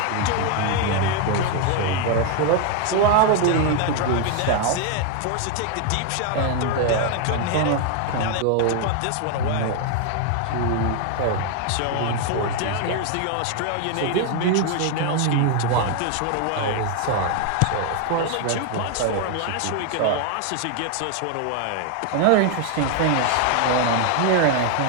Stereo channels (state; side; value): different; both; correlation 0.01